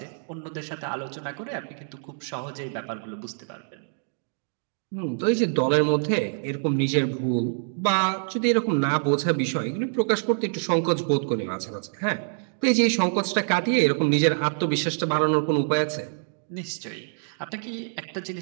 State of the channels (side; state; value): left; silent; digital silence